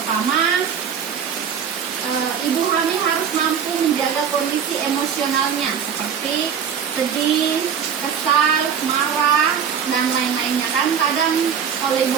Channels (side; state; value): left; quieter; 7.6 dB